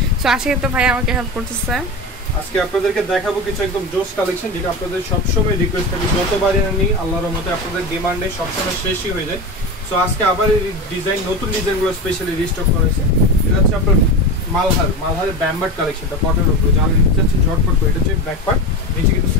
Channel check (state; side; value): normal; both; correlation 0.24